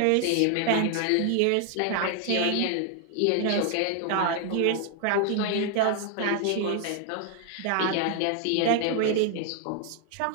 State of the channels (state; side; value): different; both; correlation 0.00